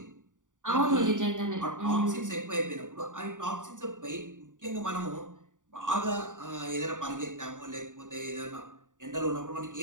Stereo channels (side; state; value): left; late; 0.87 ms